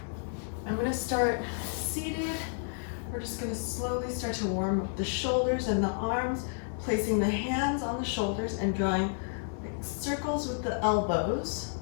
going to start seated. We're just going to slowly start to warm up the shoulders and the arms, placing the hands on the shoulders and drawing like circles with the elbows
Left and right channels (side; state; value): right; silent; 57 dB below the other